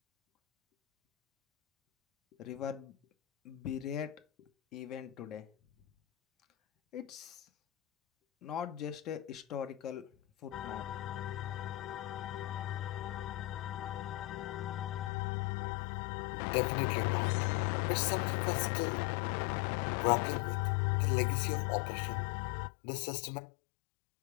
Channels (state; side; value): drops out; right; at 15.1 s